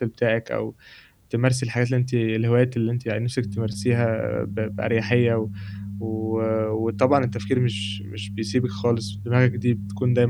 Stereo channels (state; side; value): identical; both; correlation 1.00